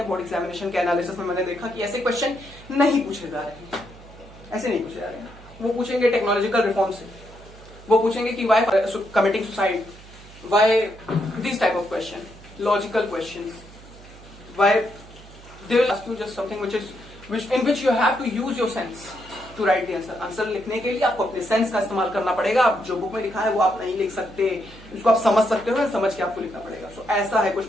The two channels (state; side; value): noise; right; hum, 20 dB below the sound